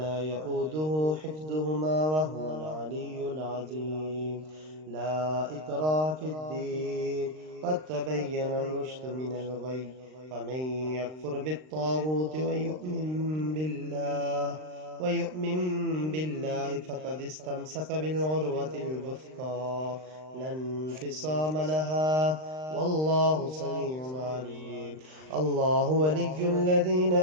يؤوده حفظهما وهو العلي العظيم. لا إكراه في الدين، قد تبين الرشد من الغي. فمن يكفر بالطاغوت ويؤمن بالله فقد استمسك بالعروة الوثقى لا انفصام لها، والله سميع عليم. الله ولي الذين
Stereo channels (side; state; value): left; late; 39 ms